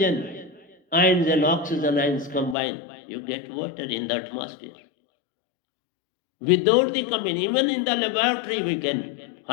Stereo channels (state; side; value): drops out; right; at 2.6 s